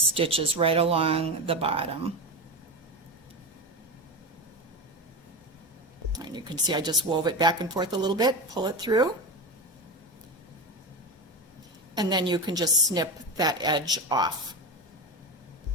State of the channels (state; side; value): normal; both; correlation 0.20